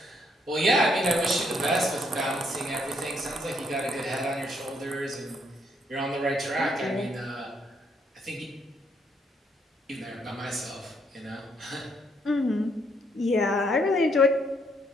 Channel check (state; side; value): normal; both; correlation 0.71